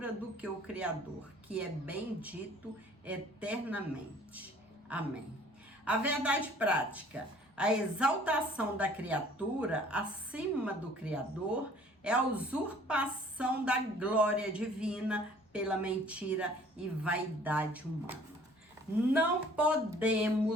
do que o Criador, que é bendito eternamente. Amém. A verdade prática: a exaltação da criatura acima do Criador é a usurpação da glória divina pela mentira e vaidade humana. Não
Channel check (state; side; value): normal; both; correlation 0.54